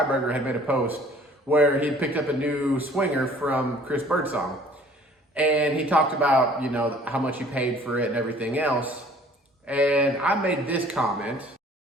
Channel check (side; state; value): both; normal; correlation 0.53